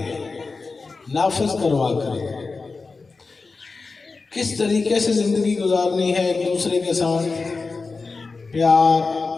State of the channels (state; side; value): quieter; right; 4.1 dB